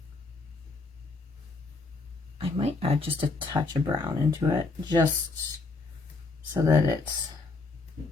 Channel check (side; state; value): right; quieter; 3.7 dB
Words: I might add just a touch of brown into it, just so that it's